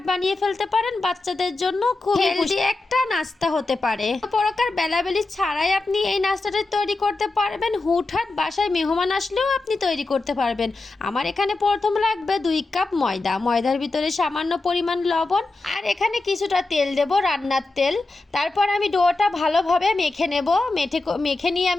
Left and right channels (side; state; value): right; quieter; 3.3 dB